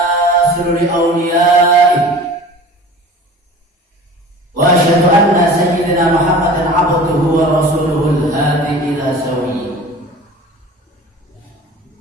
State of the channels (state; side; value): normal; both; correlation 0.41